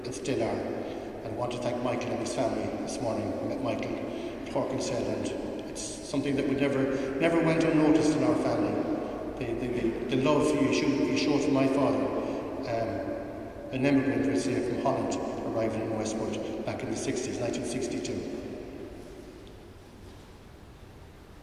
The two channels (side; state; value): both; identical; correlation 1.00